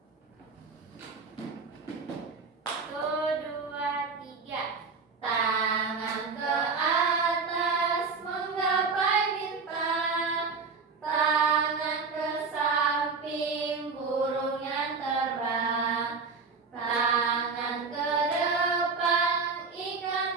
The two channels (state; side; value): quieter; left; 4.7 dB